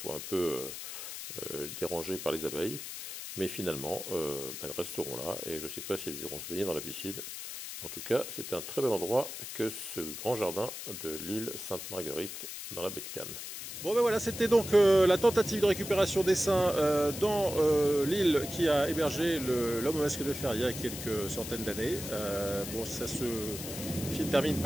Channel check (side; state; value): left; noise; hiss, 8 dB below the sound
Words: un peu dérangés par les abeilles. Mais finalement, elles resteront là et je ne sais pas si elles iront se baigner dans la piscine. En tout cas, c'est un très bel endroit que ce grand jardin de l'île Sainte-Marguerite dans la baie de Cannes. Bon ben voilà, c'était donc la tentative de récupération d'essaims dans l'île qui a hébergé l'homme au masque de fer il y a quelques centaines d'années. Bon, ça se termine